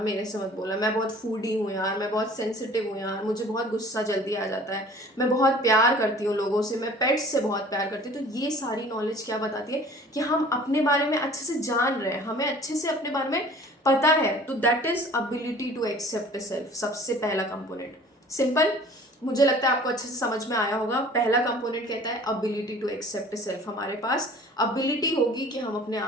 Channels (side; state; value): both; normal; correlation 0.48